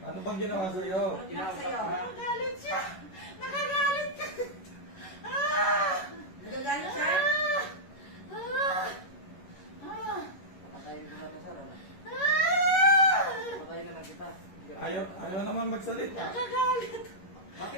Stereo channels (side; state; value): right; late; 11 ms